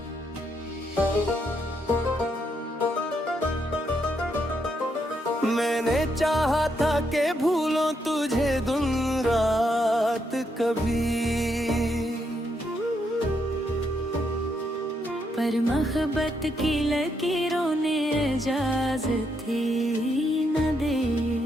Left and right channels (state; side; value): normal; both; correlation 0.78